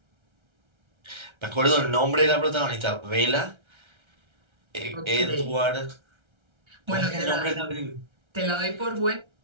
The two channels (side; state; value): left; late; 1.3 ms